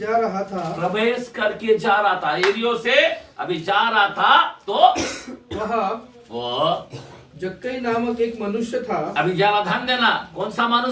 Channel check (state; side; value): identical; both; correlation 1.00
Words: रहा था। यरीहो से अभी जा रहा था तो वहाँ वो जक्कई नामक एक मनुष्य था। अभी जरा ध्यान देना, कौन सा